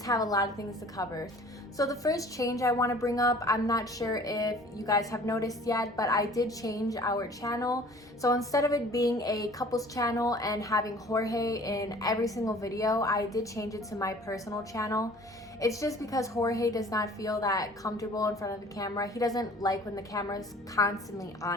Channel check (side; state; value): both; normal; correlation 0.49